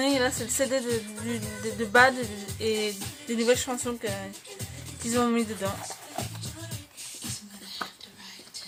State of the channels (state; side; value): identical; both; correlation 1.00